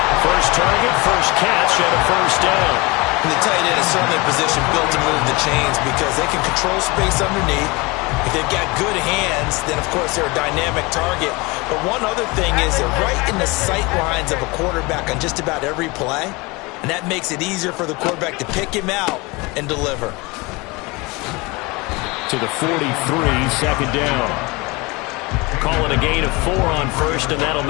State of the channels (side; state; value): right; quieter; 25.1 dB